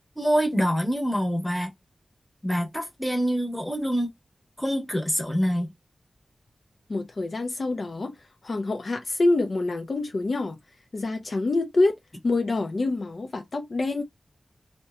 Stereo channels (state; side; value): normal; both; correlation 0.96